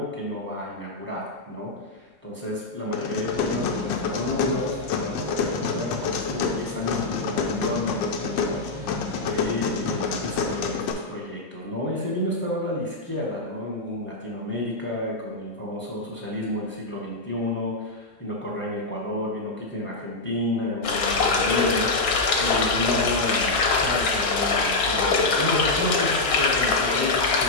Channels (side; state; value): right; quieter; 3.1 dB